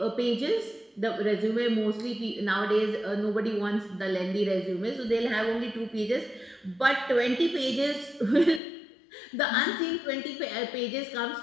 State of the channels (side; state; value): right; drops out; at 8.6 s